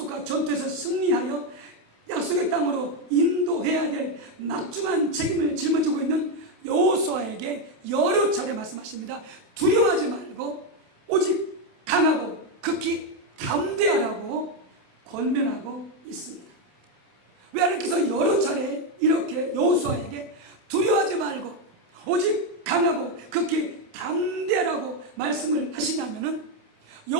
전투에서 승리하여 약속의 땅으로 인도해야 될 막중한 책임을 짊어지고 있는 여호수아에게 여러 차례 말씀하십니다. 두려워하지 말고 오직 강하고 극히 담대하라고 권면하고 있습니다. 왜 하나님께서 여러 차례 이렇게 여호수아에게 두려워하지 말고 오직 강하고 극히 담대하라고 말씀을 하시냐면은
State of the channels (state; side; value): late; left; 28 ms